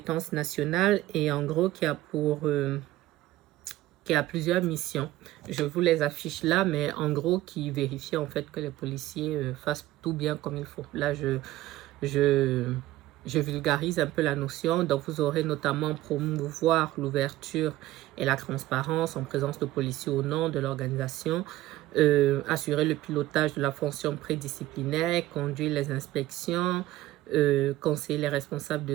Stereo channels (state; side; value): quieter; left; 16.0 dB